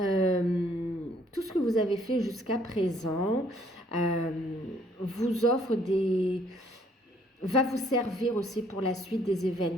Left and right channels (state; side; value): normal; both; correlation 0.64